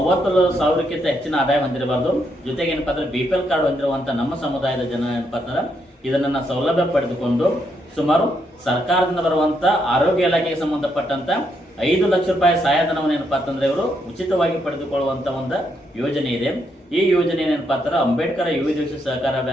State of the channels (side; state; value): both; normal; correlation 0.77